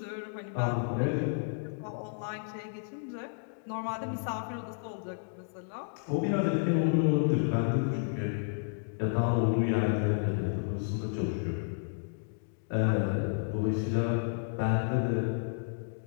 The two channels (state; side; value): silent; right; digital silence